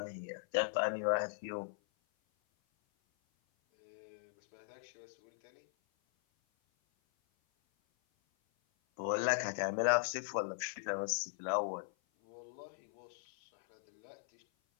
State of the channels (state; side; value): silent; right; 52 dB below the other